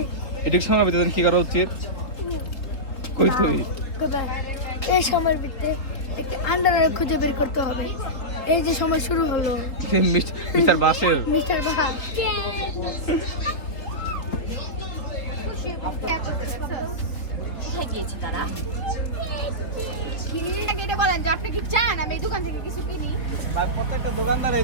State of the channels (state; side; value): late; right; 3.6 ms